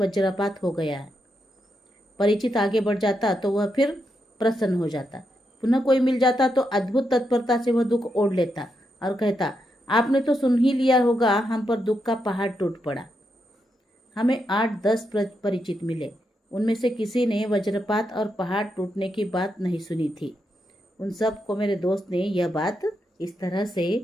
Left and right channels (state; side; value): normal; both; correlation 0.83